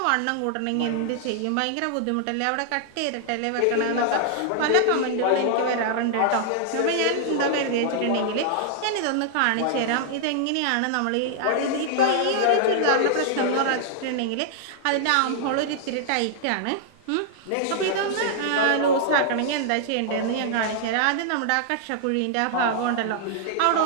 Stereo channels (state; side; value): different; both; correlation -0.01